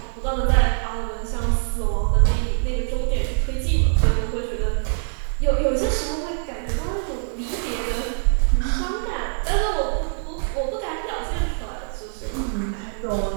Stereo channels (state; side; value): silent; left; digital silence